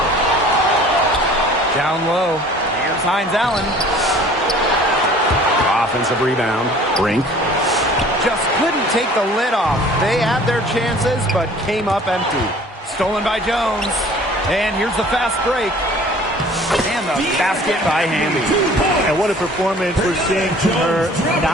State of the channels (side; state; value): both; normal; correlation 0.50